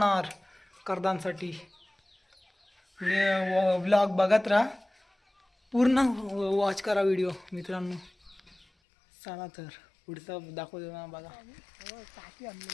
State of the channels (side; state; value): right; drops out; at 8.7 s